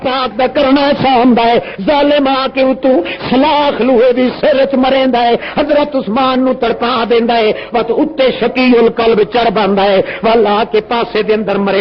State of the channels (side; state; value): both; identical; correlation 1.00